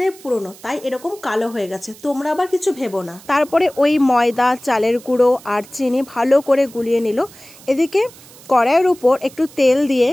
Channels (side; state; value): right; noise; hiss, 22 dB below the sound